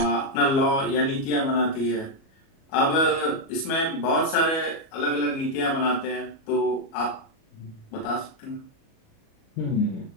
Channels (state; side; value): late; right; 37 ms